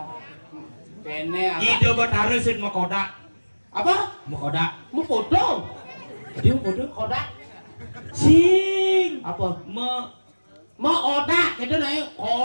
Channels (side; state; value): both; inverted; correlation -1.00